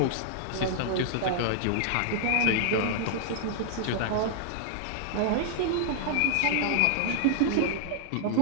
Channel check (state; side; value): different; both; correlation 0.00